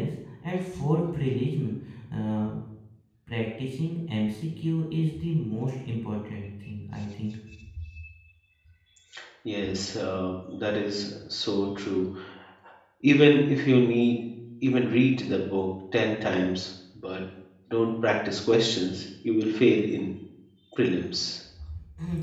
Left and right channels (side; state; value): both; identical; correlation 1.00